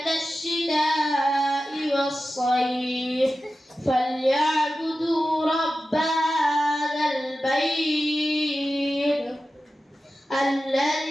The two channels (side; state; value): both; normal; correlation 0.93